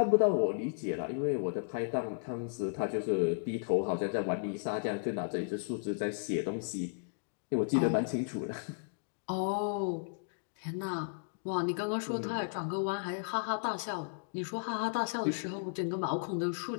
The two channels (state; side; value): silent; right; digital silence